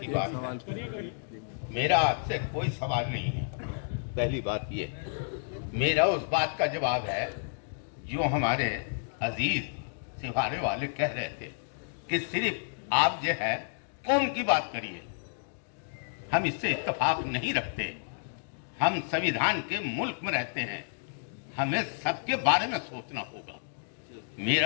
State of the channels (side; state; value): right; silent; digital silence